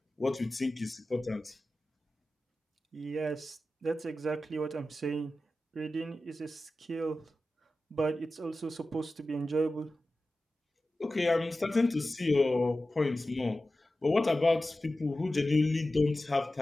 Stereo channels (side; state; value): both; normal; correlation 0.94